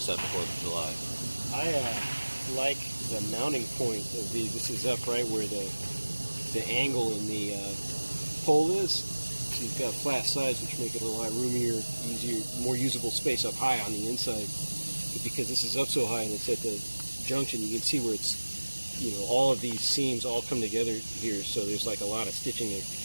after 4th of July. I like the mounting point of these. This is up right where the angle in the pole is. So you've got flat sides, which make it a lot roomier, easier, more usable space up high on the inside. But because this is up so high and it's at the junction, you can see where it's, you know, all of these seams all come together here, so there's like a lot of stitching there.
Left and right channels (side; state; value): both; inverted; correlation -1.00